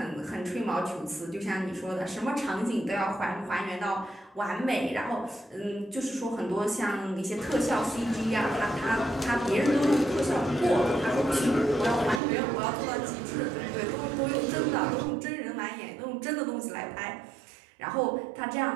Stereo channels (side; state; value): left; drops out; at 12.2 s